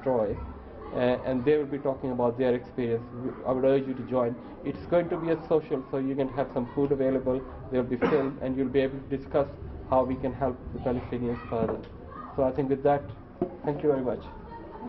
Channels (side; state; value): both; identical; correlation 1.00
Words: and they will be talking about their experience. I would urge you to join. It's going to be a social, so you can have some food available, there will be film, and you'll be able to discuss how we can help the Palestinians further. So I think with that, thank you very much.